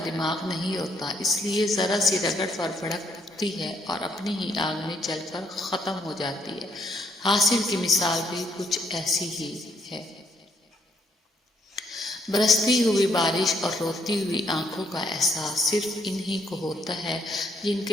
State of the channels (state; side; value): normal; both; correlation 0.70